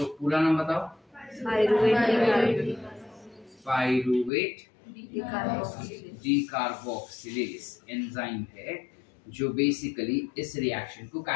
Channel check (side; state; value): right; drops out; at 4.3 s